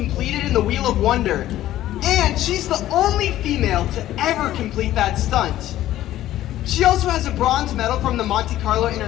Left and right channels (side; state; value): right; quieter; 13.8 dB